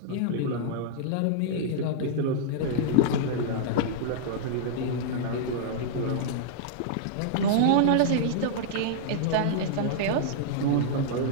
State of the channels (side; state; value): both; different; correlation -0.02